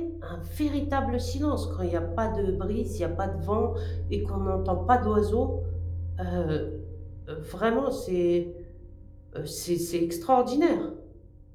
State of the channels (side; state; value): both; identical; correlation 1.00